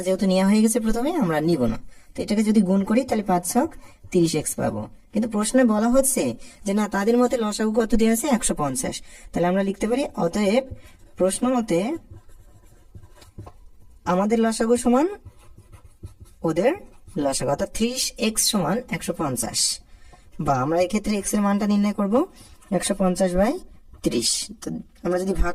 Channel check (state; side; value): identical; both; correlation 1.00